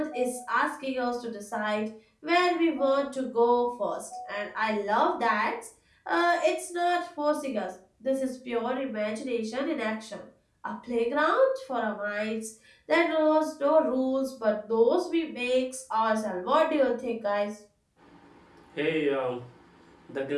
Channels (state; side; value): identical; both; correlation 1.00